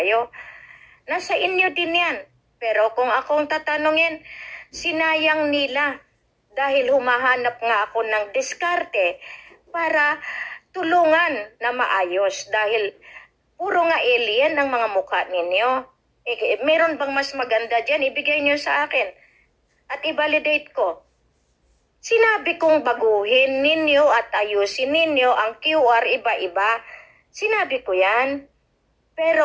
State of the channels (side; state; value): both; identical; correlation 1.00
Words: Nasa inyo din yan. Pero kung akong tatanungin, sinayang nila dahil humahanap nga ako ng diskarte para tulungan na maayos dahil puro nga alien ang mga mukha ninyo. Meron bang mas maganda dyan? Ibigay nyo sa akin at i-validate ko. Sinabi kong baguhin ninyo at ayusin ninyo ang QR iba-iba. Sinabi ko yan.